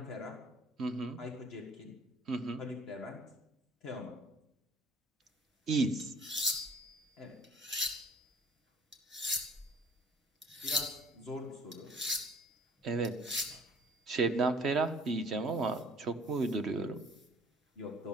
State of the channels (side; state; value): both; normal; correlation 0.54